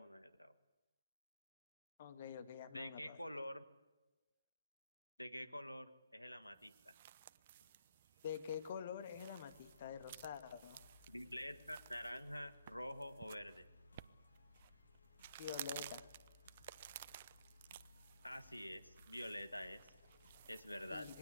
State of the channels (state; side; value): inverted; both; correlation -0.76